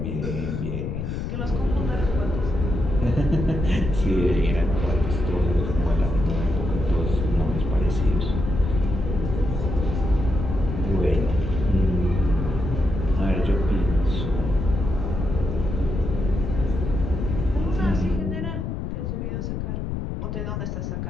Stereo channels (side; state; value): left; noise; rumble, 3 dB below the sound